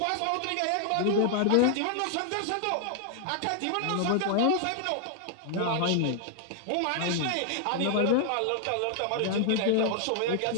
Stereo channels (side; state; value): both; different; correlation 0.00